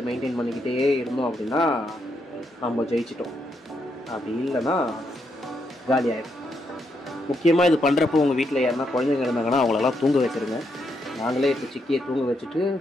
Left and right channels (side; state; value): both; normal; correlation 0.79